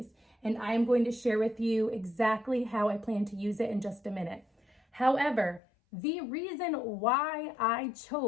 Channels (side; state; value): right; drops out; at 5.6 s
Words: And I am going to share with you exactly how I plan to use it in just a minute. However, the reason why I